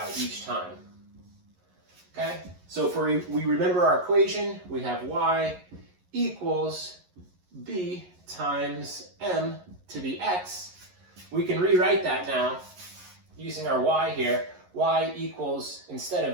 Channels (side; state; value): left; late; 11 ms